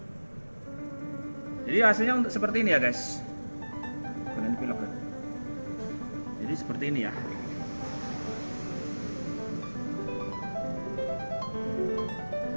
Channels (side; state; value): both; inverted; correlation -1.00